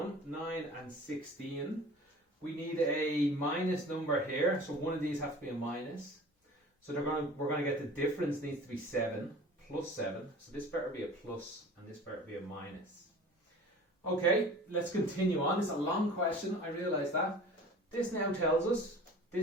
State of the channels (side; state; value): both; normal; correlation 0.43